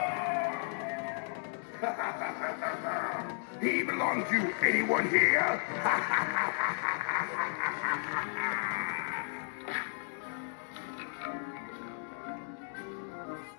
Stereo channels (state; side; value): silent; right; 55 dB below the other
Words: He belongs to anyone here?